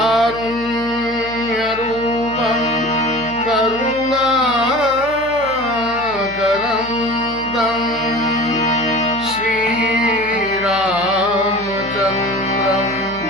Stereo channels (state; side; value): noise; left; hum, 18 dB below the sound